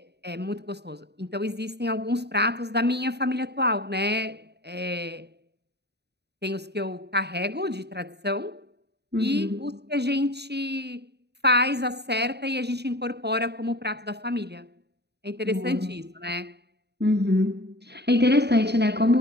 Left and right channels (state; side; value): late; left; 0.49 ms